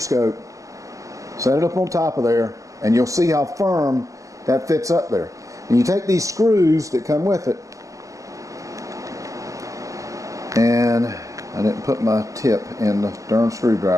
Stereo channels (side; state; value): left; late; 0.16 ms